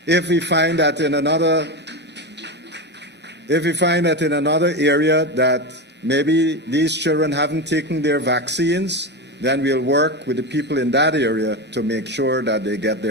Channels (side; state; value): both; normal; correlation 0.18